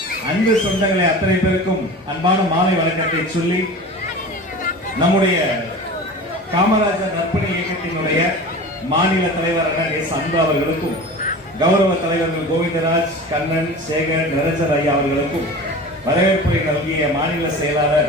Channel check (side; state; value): both; normal; correlation 0.35